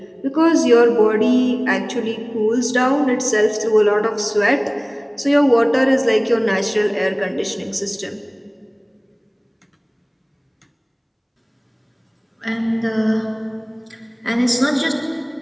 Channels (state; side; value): identical; both; correlation 1.00